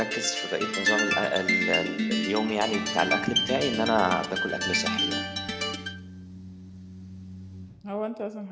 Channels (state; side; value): identical; both; correlation 1.00